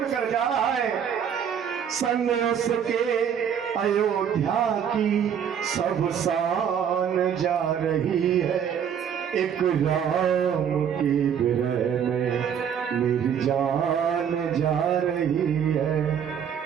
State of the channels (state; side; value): quieter; left; 8.2 dB